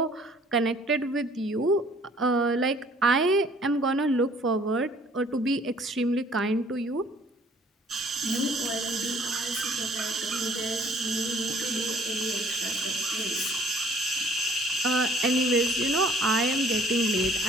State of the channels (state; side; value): normal; both; correlation 0.57